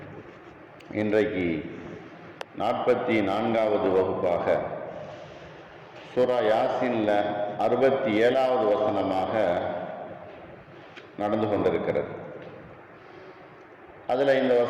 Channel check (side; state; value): both; identical; correlation 1.00